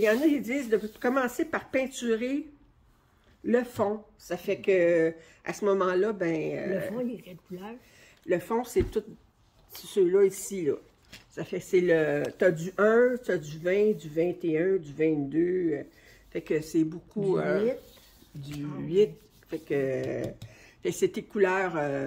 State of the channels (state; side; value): identical; both; correlation 1.00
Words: y en a qui disent de commencer par peinturer le fond. Ça fait que à ce moment-là, ben... le fond, il est quelle couleur? Le fond, c'est tout ceux-là ici, là. Ça fait que c'est le... T'as du 1, t'as du 20, du 21, du 22. Fait que c'est beaucoup... Du 8. Du 8. Fait que c'est tes couleurs